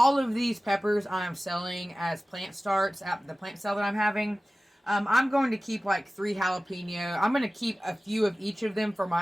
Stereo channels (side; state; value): both; normal; correlation 0.97